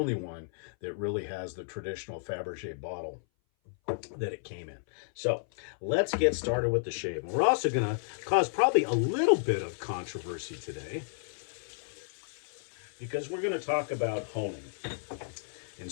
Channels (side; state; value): right; silent; 56 dB below the other